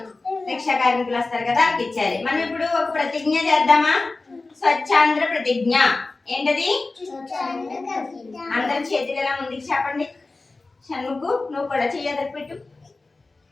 రిక్షా కార్మికులు వస్తారు కదా, వాళ్ళకి ఇచ్చాలి. మనం ఇప్పుడు ఒక ప్రతిజ్ఞ చేద్దామా? స్వచ్ఛాంధ్ర ప్రతిజ్ఞ. ఏంటది? అందరి చేతులు ఎలా ముందుకు చెప్పండి. షణ్ముఖు నువ్వు కూడా చెయ్యదకు పెట్టు.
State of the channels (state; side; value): quieter; right; 3.5 dB